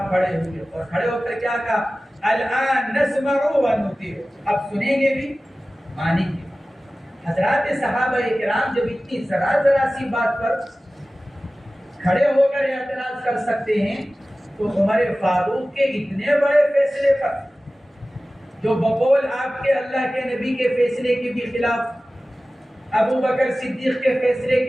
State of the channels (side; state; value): both; normal; correlation 0.96